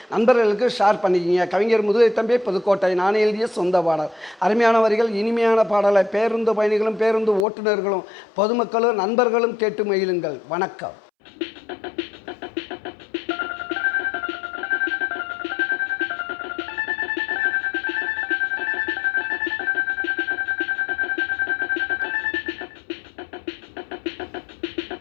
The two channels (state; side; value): drops out; right; at 7.5 s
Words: நண்பர்களுக்கு ஷேர் பண்ணிக்கிங்க. கவிஞர் முதுகை தம்பி புதுக்கோட்டை. நான் எழுதிய சொந்த பாடல். அருமையான வரிகள், இனிமையான பாடலை பேருந்து பயணிகளும் பேருந்து ஓட்டுநர்களும் பொதுமக்களும் நண்பர்களும் கேட்டு மகிழுங்கள். வணக்கம்.